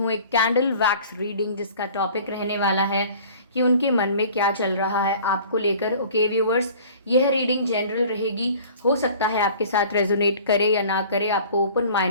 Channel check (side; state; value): both; inverted; correlation -0.47